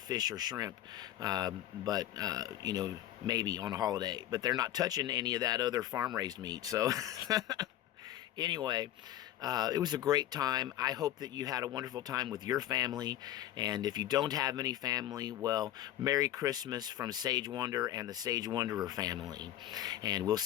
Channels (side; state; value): right; quieter; 12.9 dB